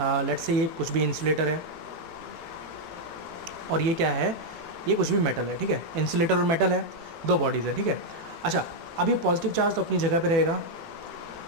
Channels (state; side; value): late; left; 18 ms